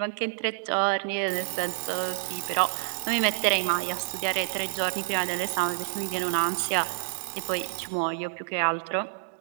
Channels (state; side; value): silent; left; digital silence